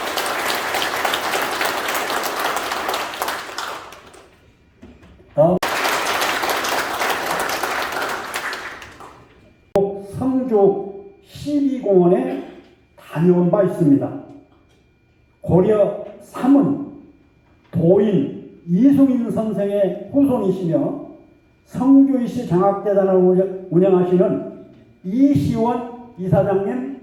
성주 12공원에 다녀온 바 있습니다. 고려 3은 도인 이승인 선생의 후손이시며 성주이시 장학재단을 운영하시는 이시원 이사장님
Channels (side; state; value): both; identical; correlation 1.00